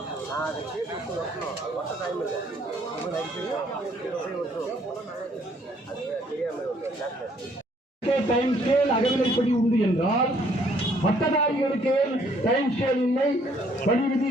டைம் ஸ்கேல் அகவிலைப்படி உண்டு என்றால் பட்டதாரிகளுக்கு டைம் ஸ்கேல் இல்லை, பணி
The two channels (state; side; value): normal; both; correlation 0.64